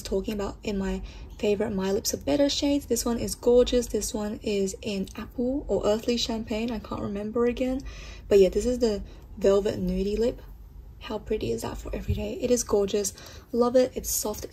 talking about in my favorite My Lips Are Better shades. This one is gorgeous. This one is in Apple or Earthly Champagne, I can't remember again, but yeah, this is the Velvet Nudie Lip. How pretty is that for everyday? It is gorgeous. Love it. It's soft,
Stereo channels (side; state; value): both; identical; correlation 1.00